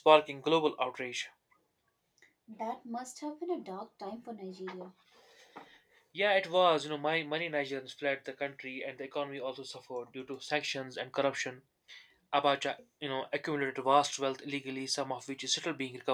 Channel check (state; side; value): identical; both; correlation 1.00